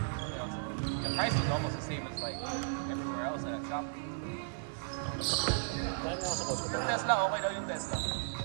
know, the price is almost the same as like everywhere else at a shop. Yung Tesla, okay daw yung Tesla.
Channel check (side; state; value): left; silent; 54 dB below the other